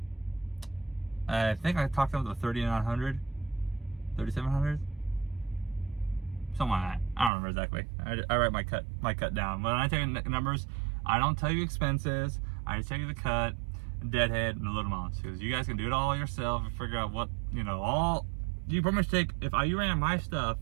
I think I talked about the 3,900, 3,700, something like that. I don't remember exactly. I write my cut down. When I tell you numbers, I don't tell you expenses. I just tell you the cut, deadhead, and the load amounts. Because you guys can do it all yourself and figure out what, you know, all. You pretty much take, if you ran my stuff,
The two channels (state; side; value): drops out; left; at 7.3 s